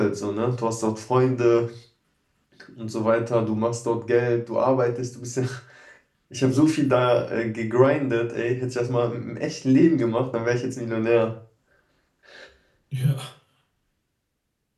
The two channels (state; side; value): identical; both; correlation 1.00